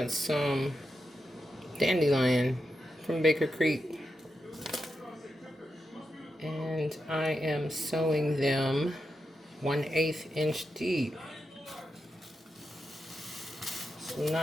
some dandelion from Baker Creek. And I am sewing them 1/8 inch deep. So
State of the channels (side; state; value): both; normal; correlation 0.87